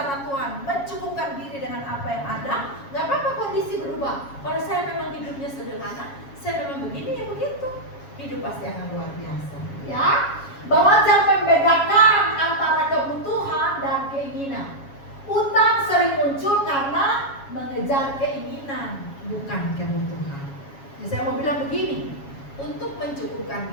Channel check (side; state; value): right; late; 7.2 ms